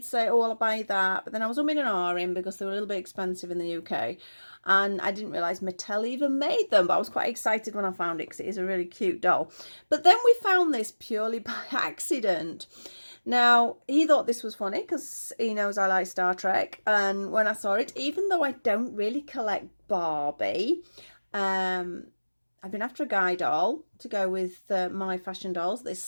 say, oh, I'll buy that. But then I was umming and ahhing because they were a little bit expensive in the UK. And I didn't realise Mattel even made them. But I was quite excited when I found it because it is a really cute doll. But then we found this purely by accident. Now, he thought this was funny because he knows I like Star Trek. And when I saw it, even though I don't really collect Barbie, I've been after a guy doll to go with my fashion dolls this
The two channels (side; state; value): both; inverted; correlation -1.00